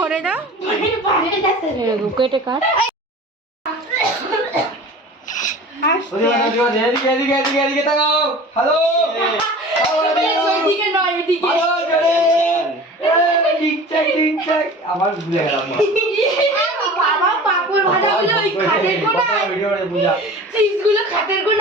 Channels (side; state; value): both; normal; correlation 0.39